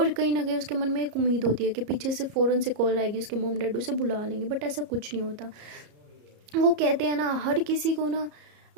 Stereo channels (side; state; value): left; late; 34 ms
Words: कहीं ना कहीं उसके मन में एक उम्मीद होती है कि पीछे से फ़ौरन से कॉल आएगी, उसके मॉम डैड उसे बुला लेंगे, बट ऐसा कुछ नहीं होता। वो कहते हैं ना हर किसी को ना